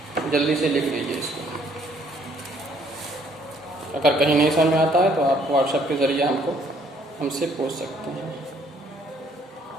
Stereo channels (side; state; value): both; normal; correlation 0.64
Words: जल्दी से लिख लीजिए इसको। अगर कहीं नहीं समझ में आता है तो आप व्हाट्सएप के ज़रिए हमसे पूछ सकते हैं।